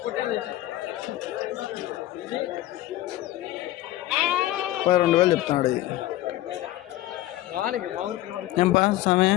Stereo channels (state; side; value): quieter; right; 15.3 dB